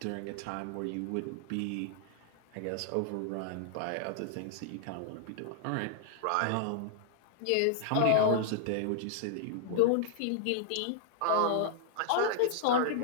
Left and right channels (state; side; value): different; both; correlation -0.01